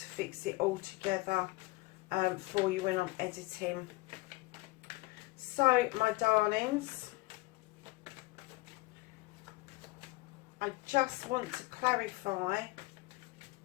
fix it all together for you when I'm editing. So, my darlings, I just want to clarify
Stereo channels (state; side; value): quieter; right; 21.4 dB